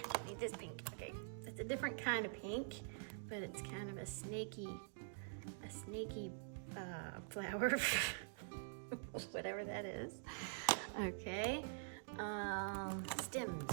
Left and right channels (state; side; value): silent; left; digital silence